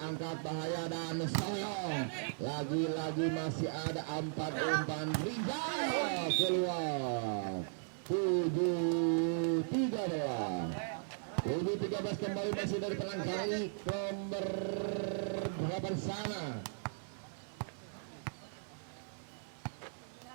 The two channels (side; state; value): left; silent; 53 dB below the other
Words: bahaya dan Soyong lagi-lagi masih ada 4 umpan Rijal keluar. 7-13 kembali masih dari penyerang Garlic nomor berapa sana.